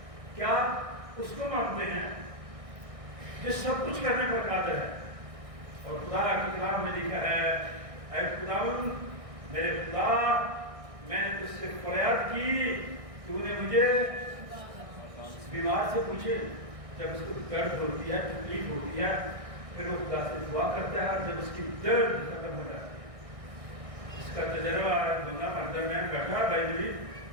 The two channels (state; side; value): late; left; 1.6 ms